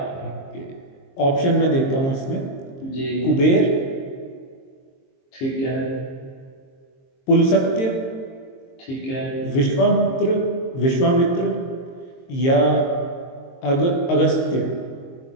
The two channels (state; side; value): late; right; 22 ms